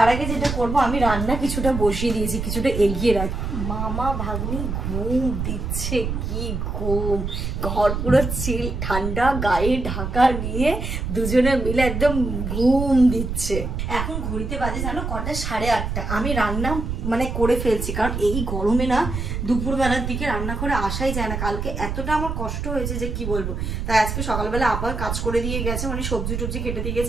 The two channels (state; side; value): noise; right; rumble, 3 dB below the sound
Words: আগে যেটা করবো, আমি রান্না কিছুটা বসিয়ে দিয়েছি, কিছুটা এগিয়ে রাখি। মামা ভাগ্নি ঘুম দিচ্ছে, কি ঘুম! ঘর পুরো চিল ঠান্ডা, গায়ে ঢাকা নিয়ে দুজনে মিলে একদম ঘুম দিচ্ছে। এখন ঘড়িতে বাজে জানো কটা, 8:30। আমি রান্না করে ফেলছি, কারণ এই গরমে না দুপুরবেলার দিকে রান্না করে আসাই যায় না। কালকে এতটা আমার কষ্ট হয়েছে যে কি বলবো। তাই আজকে সকালবেলা আবার কাজ করে দিয়ে গেছে, সবজি টবজি কেটে দিয়ে গেছে,